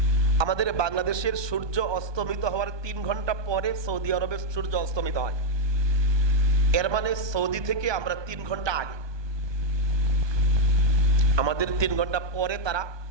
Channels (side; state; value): left; late; 1.2 ms